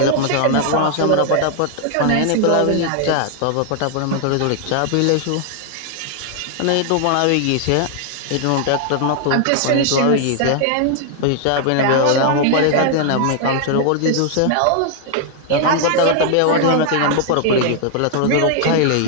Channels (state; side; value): different; both; correlation 0.00